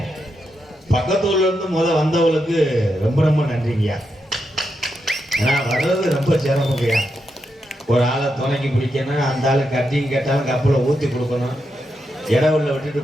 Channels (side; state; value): both; normal; correlation 0.84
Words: பக்கத்தூர்ல இருந்து வந்தவங்களுக்கு ரொம்ப ரொம்ப நன்றிங்கய்யா. ஏன்னா வர்றது ரொம்ப சிரமங்கய்யா. ஒரு ஆளை துணைக்கி பிடிக்கணும், அந்த ஆளு கட்டிங் கேட்டாலும் கப்பலை ஊற்றி கொடுக்கணும், இடவுள்ள விட்டுட்டு